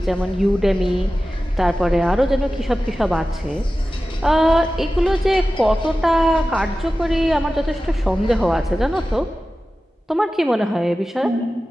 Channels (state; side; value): normal; both; correlation 0.95